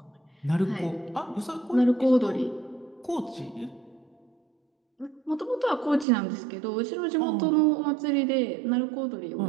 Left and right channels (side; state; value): left; drops out; at 6.1 s